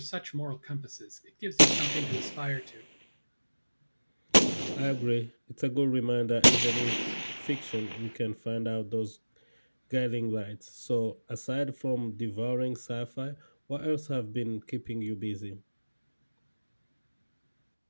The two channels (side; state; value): both; inverted; correlation -1.00